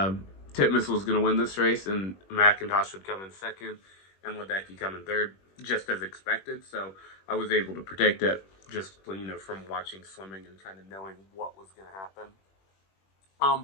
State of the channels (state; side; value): late; right; 21 ms